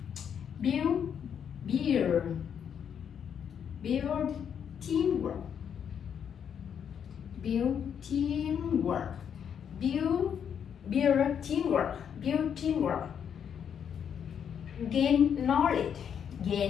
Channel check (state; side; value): quieter; right; 8.1 dB